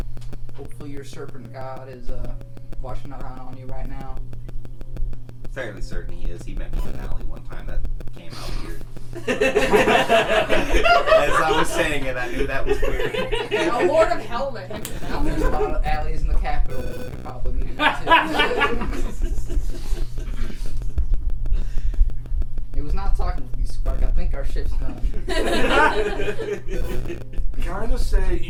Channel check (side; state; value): both; identical; correlation 1.00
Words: Hopefully your serpent god is watching around on you right now. Fairly certain he is. He met me in an alley one time that came out weird. As I was saying it, I knew that was weird. A Lord of Hell met him. There's a lot of alleys in the capital that you could probably meet him at, too. It was not talking with you, Spark. I think our ship's done. Can I just